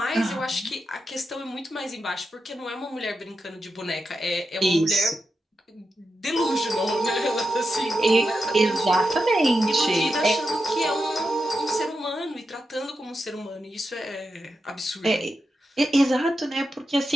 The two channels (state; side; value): normal; both; correlation 0.88